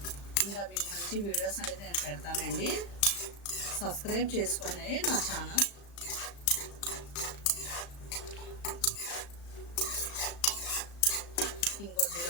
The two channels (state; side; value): late; right; 35 ms